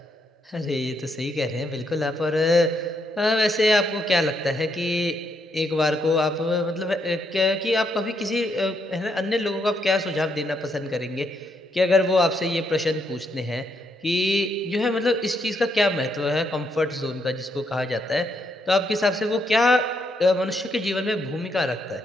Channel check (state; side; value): normal; both; correlation 0.77